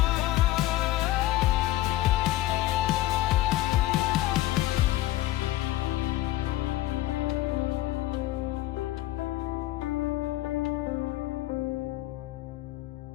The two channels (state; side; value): quieter; right; 15.8 dB